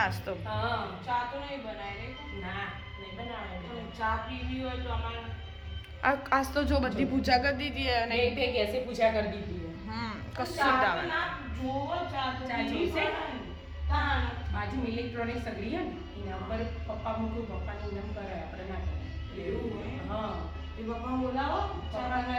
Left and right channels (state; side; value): identical; both; correlation 1.00